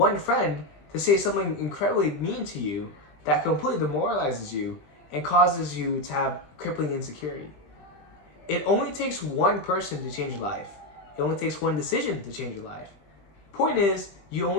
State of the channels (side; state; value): right; late; 20 ms